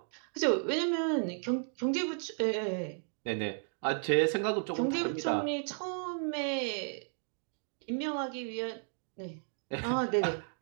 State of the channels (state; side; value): silent; left; 55 dB below the other